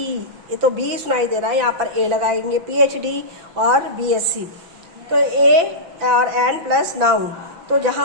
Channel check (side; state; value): left; late; 5.9 ms